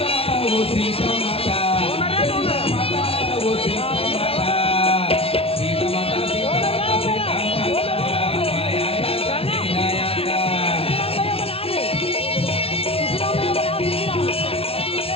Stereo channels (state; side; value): late; right; 0.27 ms